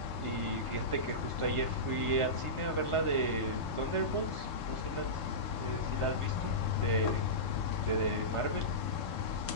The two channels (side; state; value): right; late; 3.3 ms